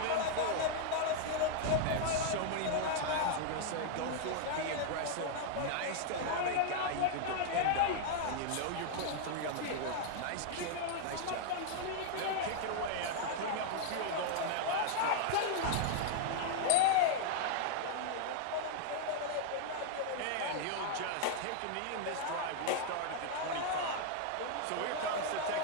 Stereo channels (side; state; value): both; different; correlation 0.00